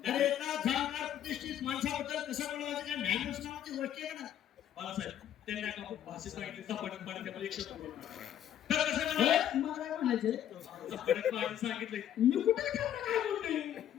एका जाणकार प्रतिष्ठित माणसाबद्दल कसं बोलायचं काय मॅनर्स नावाची गोष्ट आहे ना. बाळासाहेब त्यांनी एका भाषेत सांगितलं चपाटक पाणी त्यामध्ये 100 तर कसं म्हणाले? मला काय म्हणायचंय, चपाटक पाणी सांगितलंय. मी कुठे त्यांना काय बोलतोय,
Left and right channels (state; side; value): quieter; right; 10.7 dB